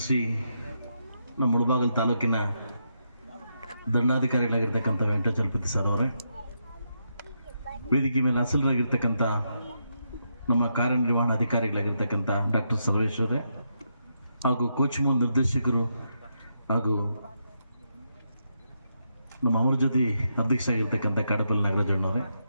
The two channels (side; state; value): both; inverted; correlation -0.81